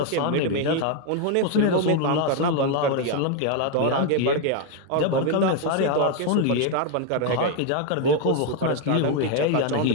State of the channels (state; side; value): different; both; correlation 0.01